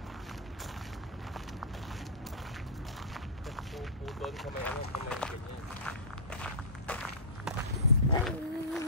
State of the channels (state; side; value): normal; both; correlation -0.19